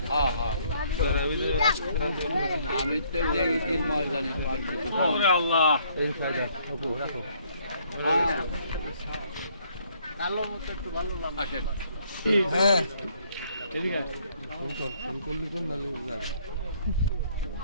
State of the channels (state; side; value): inverted; both; correlation -0.65